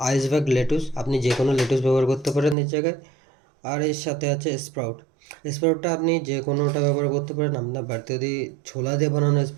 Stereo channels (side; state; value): left; drops out; at 2.6 s